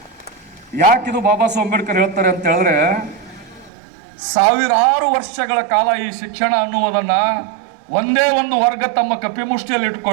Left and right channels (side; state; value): left; drops out; at 3.7 s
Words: ಯಾಕಿದು ಬಾಬಾ ಸಾಹೇಬ್ ಅಂಬೇಡ್ಕರ್ ಹೇಳ್ತಾರೆ ಅಂತ ಹೇಳಿದ್ರೆ, ಸಾವಿರಾರು ವರ್ಷಗಳ ಕಾಲ ಈ ಶಿಕ್ಷಣ ಅನ್ನುವುದನ್ನ ಒಂದೇ ಒಂದು ವರ್ಗ ತಮ್ಮ ಕಪಿಮುಷ್ಟಿಯಲ್ಲಿ